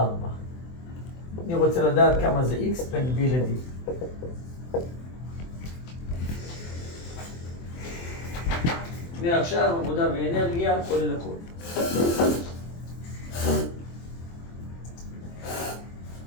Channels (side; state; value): right; late; 24 ms